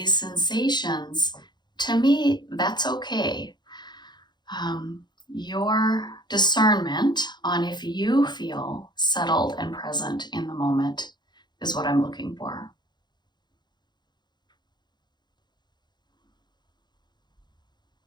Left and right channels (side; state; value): right; late; 0.21 ms